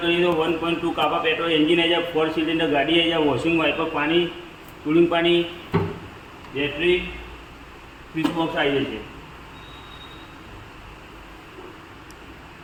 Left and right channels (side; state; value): both; identical; correlation 1.00